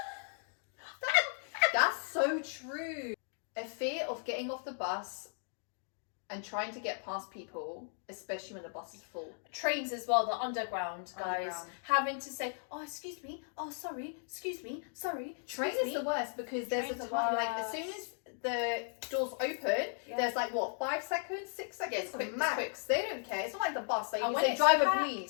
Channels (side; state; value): right; silent; 54 dB below the other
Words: That's so true. A fear of getting off the bus and trying to get past people, especially when the bus is full. Trains as well, the underground guys, having to say, oh, excuse me, oh, sorry, excuse me, sorry. Train is the worst because there's a time, as soon as the doors open, there's 5 seconds, 6 seconds, quick, max. They don't care. It's not like the bus. Like you say, it's driver, packed,